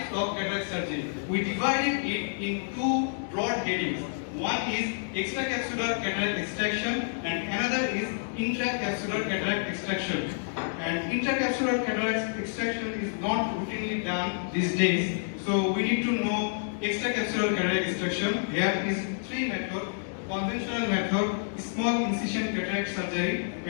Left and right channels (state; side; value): silent; right; digital silence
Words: of cataract surgery. We divided it in two broad headings. One is extracapsular cataract extraction and another is intracapsular cataract extraction. And intracapsular cataract extraction is not routinely done these days. So we need to know extracapsular cataract extraction. Here is three methods: conventional method, small incision cataract surgery,